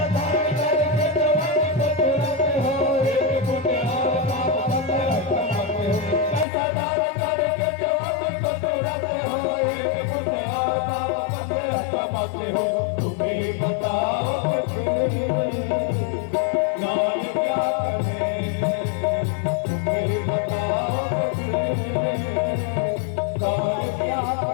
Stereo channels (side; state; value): right; drops out; at 6.5 s